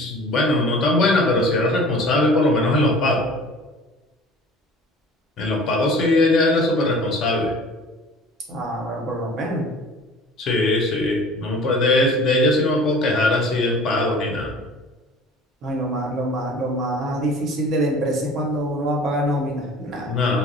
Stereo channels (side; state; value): both; normal; correlation 0.45